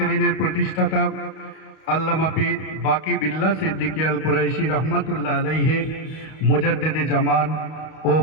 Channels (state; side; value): late; right; 32 ms